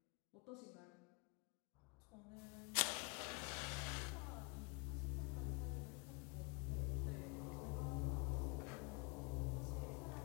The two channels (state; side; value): quieter; right; 31.2 dB